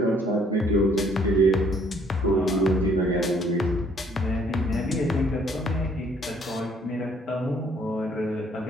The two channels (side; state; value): both; normal; correlation 0.63